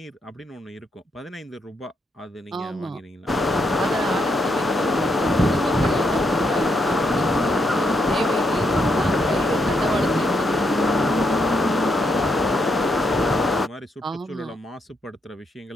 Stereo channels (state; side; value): normal; both; correlation 0.78